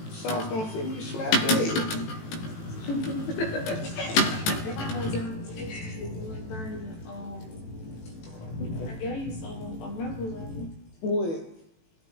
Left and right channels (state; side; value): late; right; 18 ms